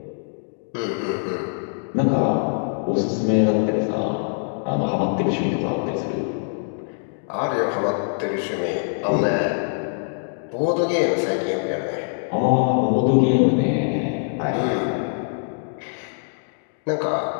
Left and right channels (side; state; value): right; silent; digital silence